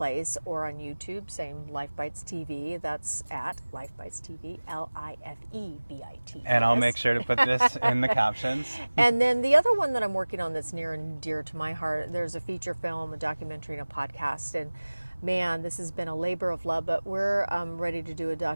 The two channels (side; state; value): both; inverted; correlation -1.00